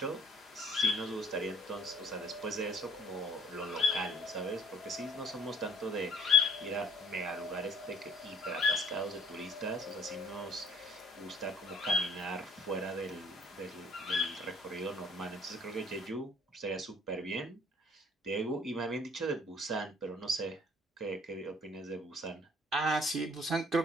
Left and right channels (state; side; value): normal; both; correlation 0.58